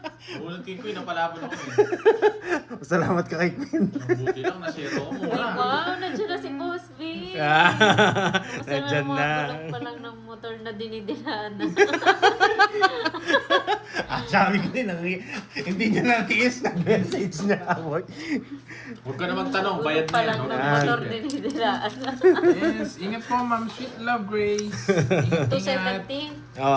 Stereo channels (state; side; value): identical; both; correlation 1.00